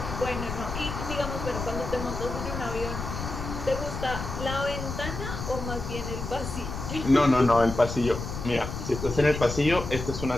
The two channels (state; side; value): noise; left; rumble, 6 dB below the sound